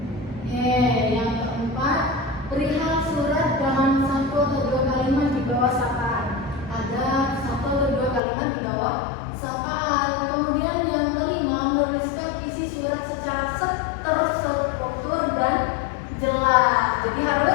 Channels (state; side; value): drops out; right; at 8.2 s